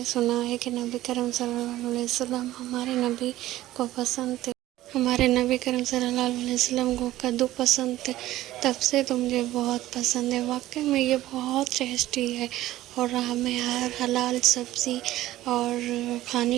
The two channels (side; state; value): left; quieter; 15.1 dB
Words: سنا ہے کہ نبی کریم صلی اللہ علیہ وسلم ہمارے نبی کو پسند تھے، ہمارے نبی کریم صلی اللہ علیہ وسلم کو کدو پسند تھے، تب سے تو مجھے بہت پسند ہے۔ واقعی میں یہ بہت ٹیسٹی ہے، اور ہمیں ہر حلال سبزی اور